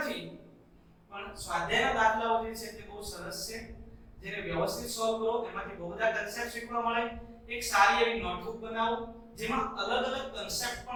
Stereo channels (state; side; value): identical; both; correlation 1.00